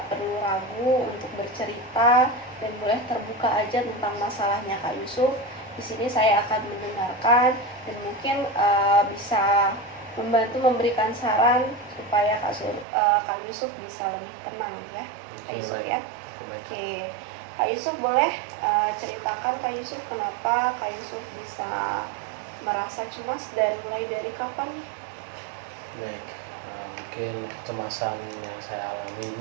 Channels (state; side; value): drops out; left; at 12.9 s